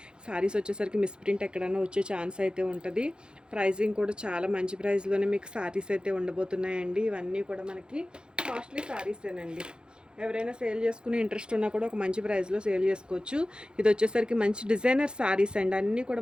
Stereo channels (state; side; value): late; left; 0.049 ms